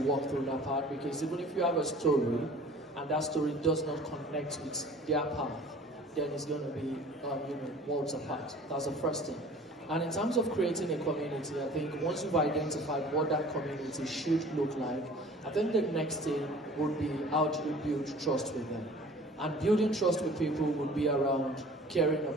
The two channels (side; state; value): both; normal; correlation 0.46